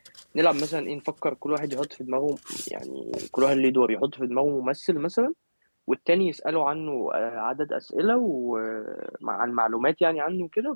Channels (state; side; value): inverted; both; correlation -1.00